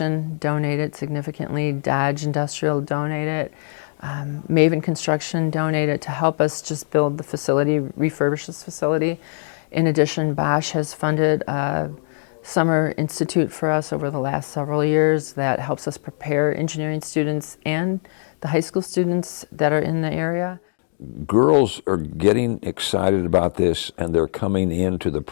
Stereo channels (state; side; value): silent; right; digital silence